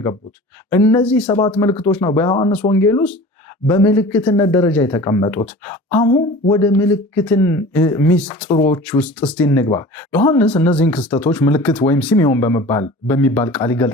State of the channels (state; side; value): normal; both; correlation 0.40